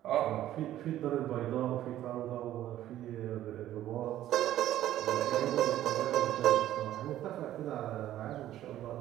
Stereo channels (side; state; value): left; quieter; 13.1 dB